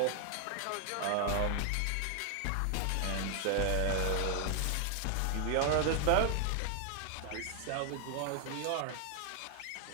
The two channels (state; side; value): different; both; correlation 0.00